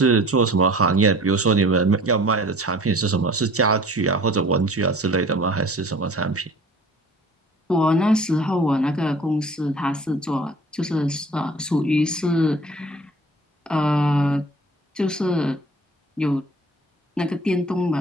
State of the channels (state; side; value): normal; both; correlation 0.47